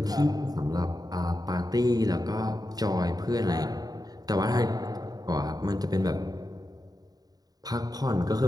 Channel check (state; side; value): late; left; 0.18 ms